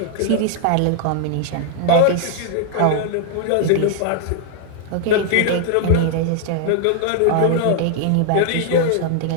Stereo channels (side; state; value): both; different; correlation 0.00